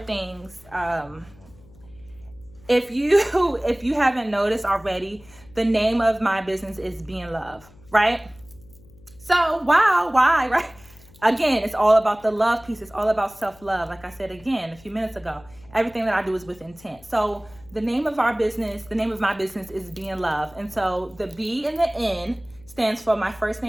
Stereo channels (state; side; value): noise; left; hum, 25 dB below the sound